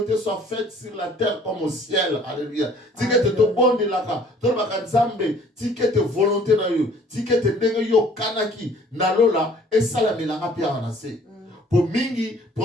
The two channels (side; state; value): both; normal; correlation 0.55